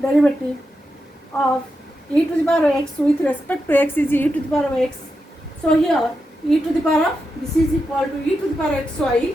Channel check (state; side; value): normal; both; correlation 0.87